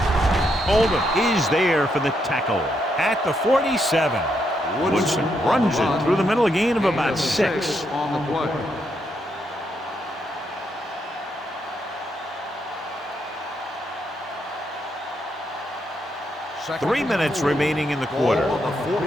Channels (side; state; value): both; normal; correlation 0.79